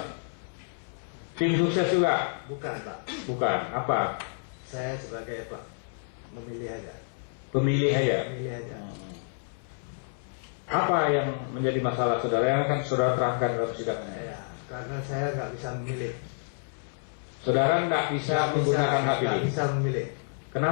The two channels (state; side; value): silent; right; 59 dB below the other